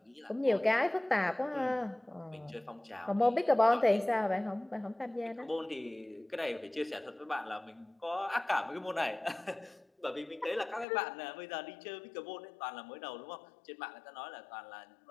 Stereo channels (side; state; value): right; drops out; at 10.9 s